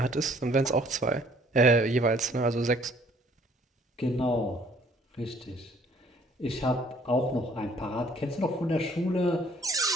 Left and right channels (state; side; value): normal; both; correlation 0.60